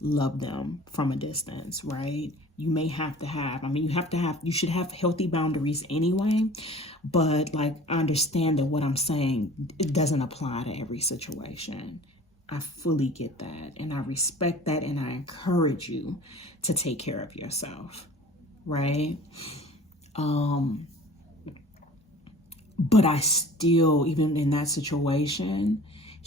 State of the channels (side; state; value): both; normal; correlation 0.45